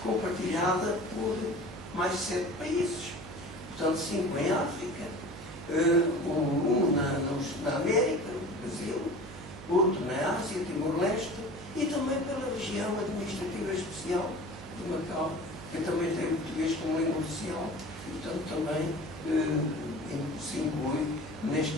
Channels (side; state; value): right; noise; hum, 14 dB below the sound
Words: compartilhada por mais de 7 países. Portanto, 5 em África, um na América, no Brasil, outro na Ásia, Timor-Leste, e também pela região administrativa especial de Macau, que também tem o português como língua oficial, e, portanto, também se inclui neste